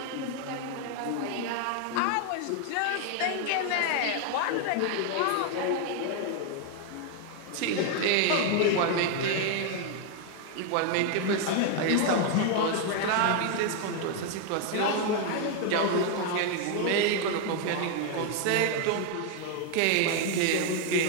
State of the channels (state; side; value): different; both; correlation 0.01